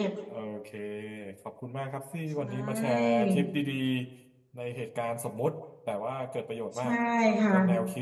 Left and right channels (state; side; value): identical; both; correlation 1.00